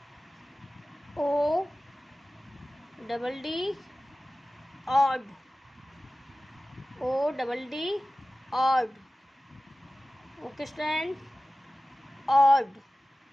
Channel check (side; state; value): both; normal; correlation 0.96